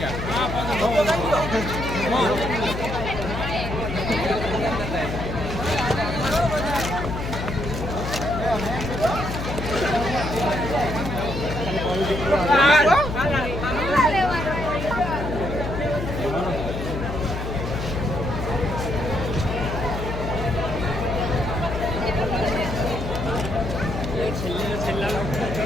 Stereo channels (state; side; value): noise; left; hum, 5 dB below the sound